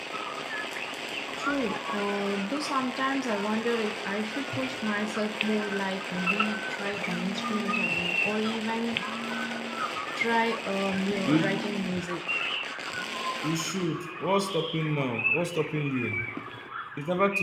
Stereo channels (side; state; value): both; identical; correlation 1.00